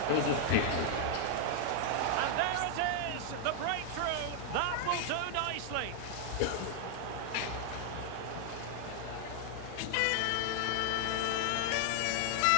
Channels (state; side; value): different; both; correlation 0.00